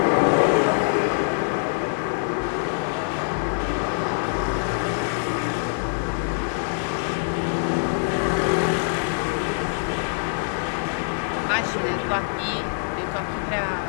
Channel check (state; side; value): silent; right; digital silence